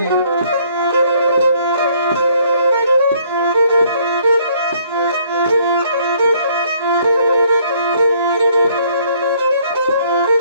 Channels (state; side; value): inverted; both; correlation -0.63